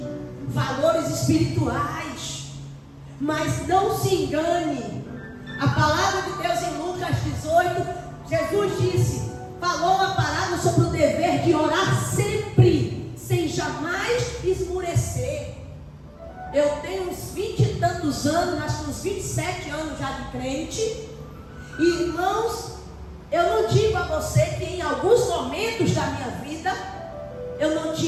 valores espirituais. Mas não se engane. A palavra de Deus em Lucas 18, Jesus disse, falou uma palavra sobre o dever de orar sempre, sem jamais esmurecer. Eu tenho uns 20 e tantos anos, acho que uns 27 anos já de crente. E, irmãos, eu não digo a você que em alguns momentos da minha vida eu não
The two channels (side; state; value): both; identical; correlation 1.00